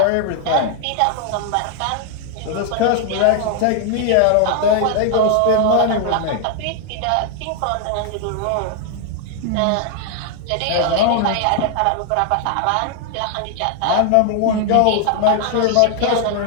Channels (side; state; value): both; different; correlation 0.00